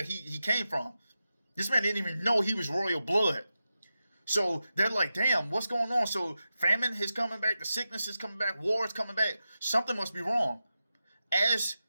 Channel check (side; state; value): both; inverted; correlation -0.91